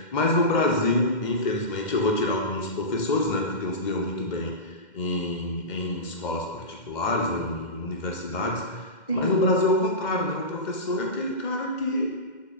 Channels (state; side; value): late; right; 2.1 ms